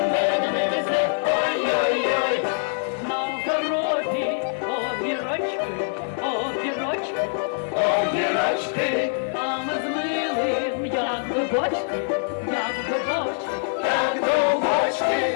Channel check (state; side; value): silent; right; 57 dB below the other